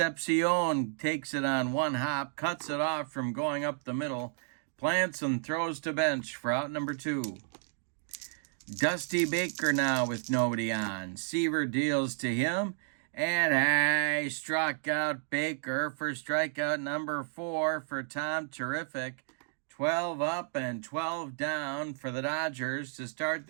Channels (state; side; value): silent; left; digital silence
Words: takes it on one hop, cuts it off from going up the middle, plants and throws to bench for out number 2. Dusty Baker now with nobody on. Seaver deals to him, and struck out Baker for strikeout number 4 for Tom Terrific. 12 up and 12 down for the Dodgers to start